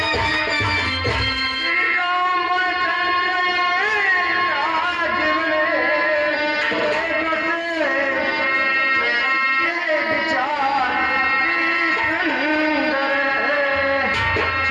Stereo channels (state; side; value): identical; both; correlation 1.00